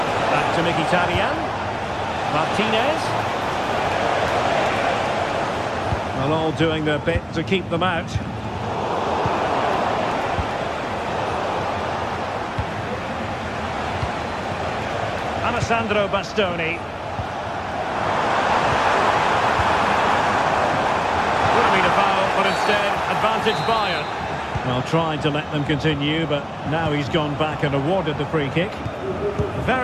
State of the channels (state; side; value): identical; both; correlation 1.00